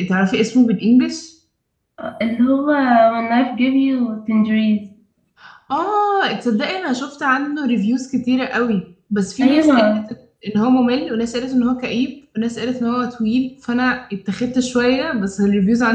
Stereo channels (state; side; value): identical; both; correlation 1.00